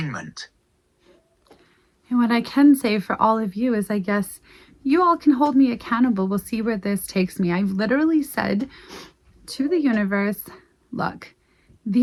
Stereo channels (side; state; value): both; identical; correlation 1.00